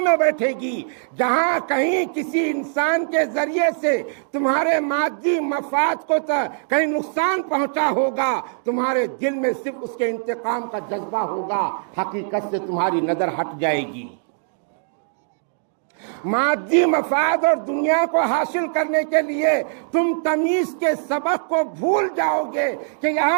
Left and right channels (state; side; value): silent; left; digital silence